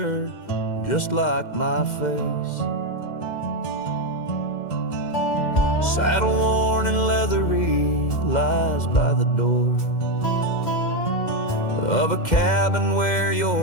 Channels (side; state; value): right; late; 2.1 ms